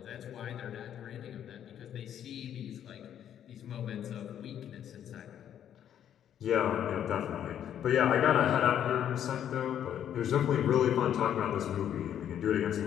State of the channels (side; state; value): right; quieter; 10.0 dB